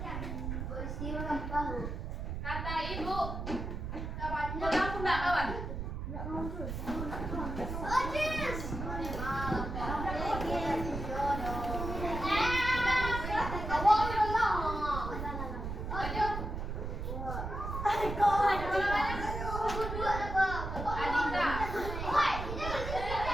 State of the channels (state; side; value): noise; right; rumble, 5 dB below the sound